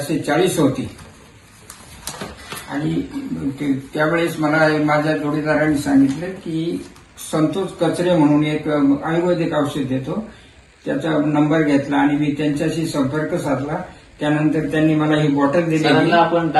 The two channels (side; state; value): both; identical; correlation 1.00